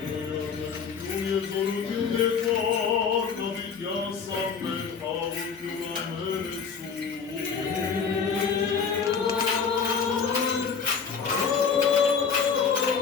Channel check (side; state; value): right; quieter; 6.1 dB